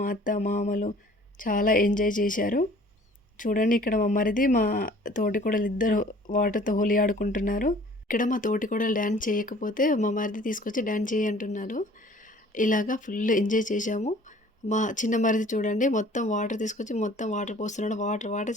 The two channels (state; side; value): normal; both; correlation 0.52